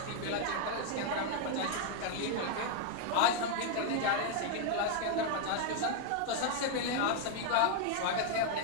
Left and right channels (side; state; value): both; different; correlation 0.00